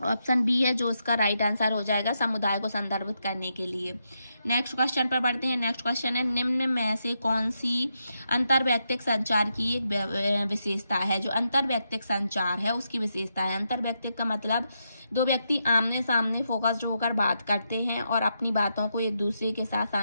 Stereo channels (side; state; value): both; inverted; correlation -0.83